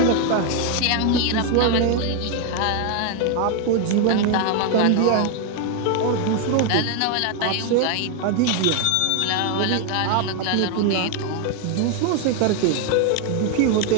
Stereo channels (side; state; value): both; different; correlation 0.01